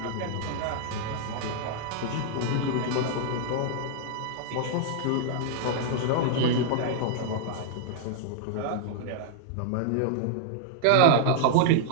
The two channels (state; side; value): different; both; correlation -0.01